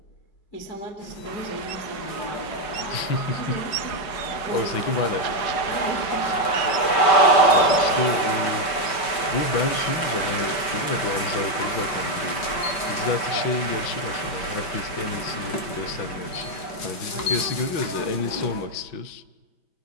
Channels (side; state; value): right; late; 5.2 ms